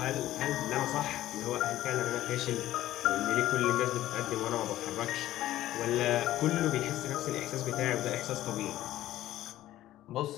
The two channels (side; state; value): right; quieter; 14.3 dB